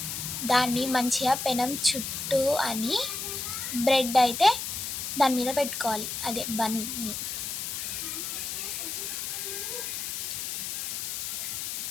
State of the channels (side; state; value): left; noise; hiss, 4 dB below the sound